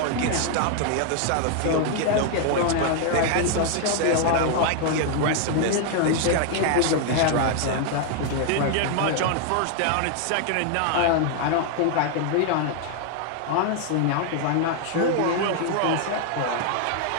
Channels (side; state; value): both; different; correlation 0.00